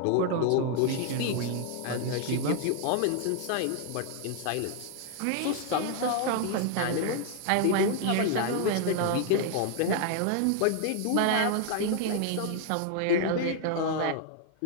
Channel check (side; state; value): both; different; correlation 0.00